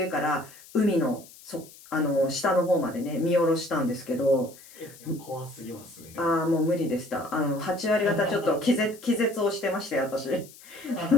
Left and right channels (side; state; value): left; noise; hiss, 21 dB below the sound